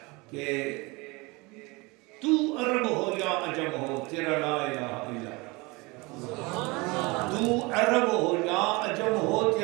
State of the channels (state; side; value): quieter; left; 25.4 dB